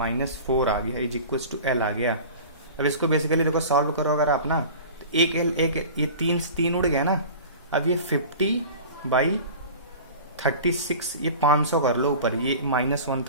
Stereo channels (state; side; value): inverted; both; correlation -0.38